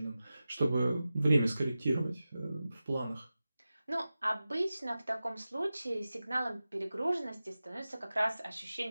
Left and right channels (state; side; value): inverted; both; correlation -0.94